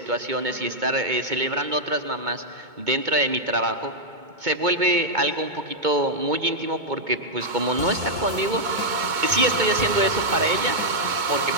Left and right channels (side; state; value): left; late; 2.2 ms